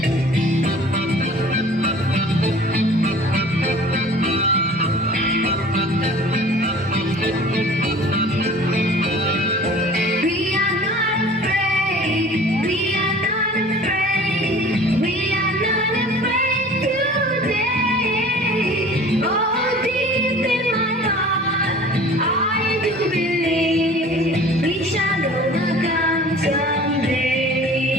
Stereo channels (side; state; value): both; normal; correlation 0.45